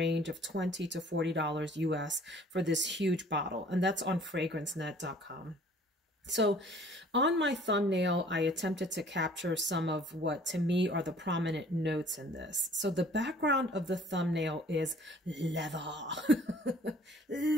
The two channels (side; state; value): both; normal; correlation 0.53